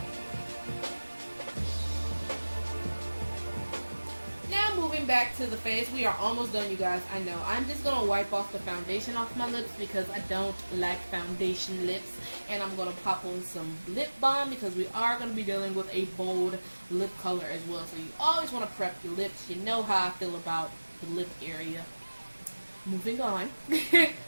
Now moving back to the face, we are almost done, you guys. I know. I'm just going to wipe off the foundation off my lips because I don't like foundation lips. And I'm going to pop on some lip balm because we are going to be dealing with a bold lip color as well. So you always want to prep your lips. You know how I feel about the lip area. Moving on.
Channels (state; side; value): inverted; both; correlation -1.00